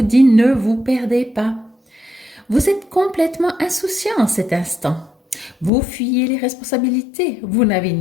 dit ne vous perdez pas. Vous êtes complètement insouciant en cet instant. Vous fuyez les responsabilités. Vous n'avez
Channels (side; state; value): right; drops out; at 5.7 s